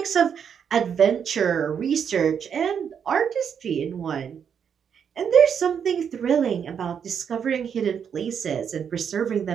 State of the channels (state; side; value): quieter; left; 7.6 dB